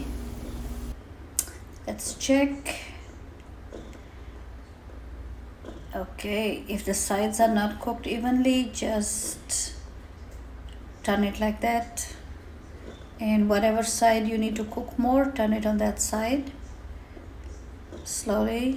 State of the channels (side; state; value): both; identical; correlation 1.00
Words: Let's check. Okay, if the sides are not cooked evenly, just turn it like that. And whatever side you need to cook more, turn it on that side.